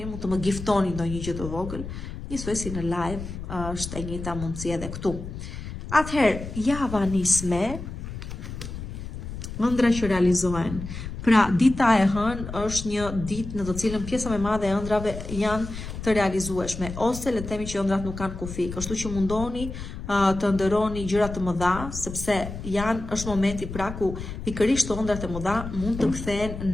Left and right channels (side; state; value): left; noise; rumble, 9 dB below the sound